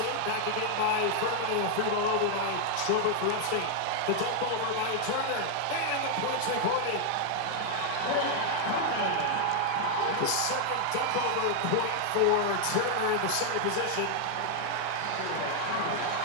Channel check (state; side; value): different; both; correlation 0.00